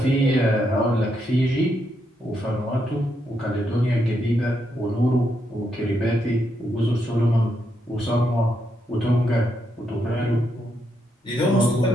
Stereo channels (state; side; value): normal; both; correlation 0.79